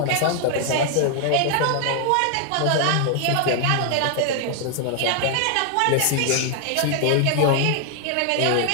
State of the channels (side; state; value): both; different; correlation 0.00